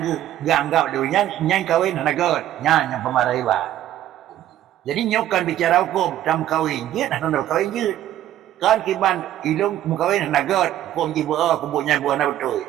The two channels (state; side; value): quieter; left; 12.5 dB